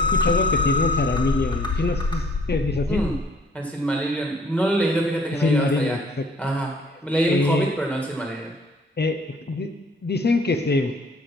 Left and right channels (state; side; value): normal; both; correlation 0.58